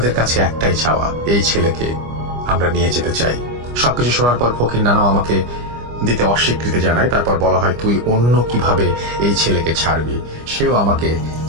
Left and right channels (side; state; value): left; late; 25 ms